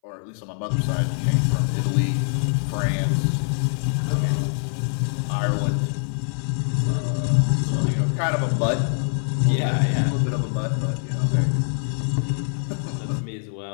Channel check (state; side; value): silent; right; 60 dB below the other